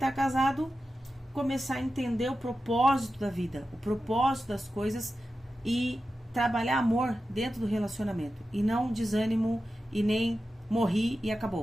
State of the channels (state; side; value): normal; both; correlation 0.92